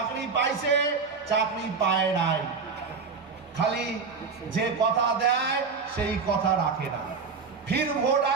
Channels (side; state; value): left; quieter; 5.1 dB